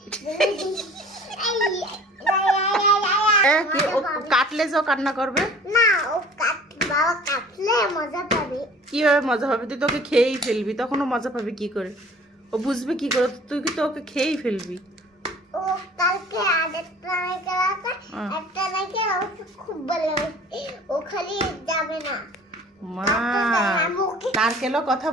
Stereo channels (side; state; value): both; normal; correlation 0.48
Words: কি ও কাটলে যে ও কান্না করবে? না ও বাবা কাটলে মজা পাবে। কিভাবে মজা হবে? তুই তোকে খেয়েই ফেলবি, তখন ও মজা পাবে কি করে? ও বুঝবে কি করে? তুই কি তো ওকে খেয়েই ফেলবি। ও কালকে আরেকটা নারকেল আছে, একটা নারকেল আমাকে খুব ভালো লাগে, ও খালি যাবে না। মা নারকেলও কথা